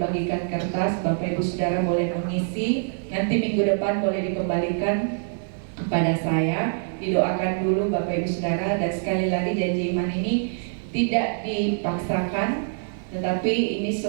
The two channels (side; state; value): left; silent; digital silence